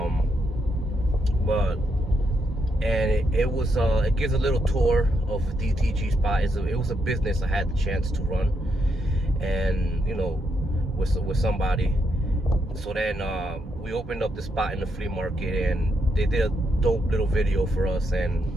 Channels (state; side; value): normal; both; correlation 0.79